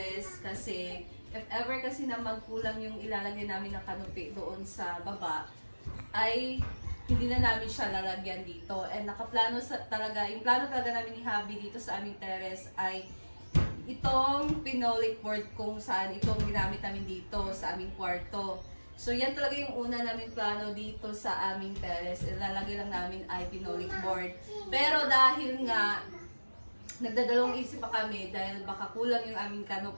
kasi if ever kasi na magkulang yung ilalagay namin ng canopy doon sa baba, ay hindi na namin siya lalagyan dito. And nakaplano talaga, yung plano talaga namin ni Habi dito sa aming terrace ay itong pinolik board kung saan itong ginamit namin dito sa aming kwarto. So yan talaga yung una namin plano dito sa aming terrace. Ilalagay lang namin ay pinolik board. Pero dahil nga nagdadalawang isip pa kami dahil baka kulang yung aming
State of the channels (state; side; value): inverted; both; correlation -1.00